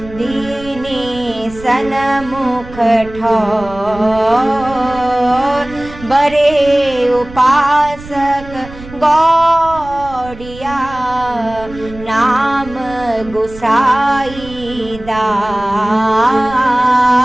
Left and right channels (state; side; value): noise; right; rumble, 16 dB below the sound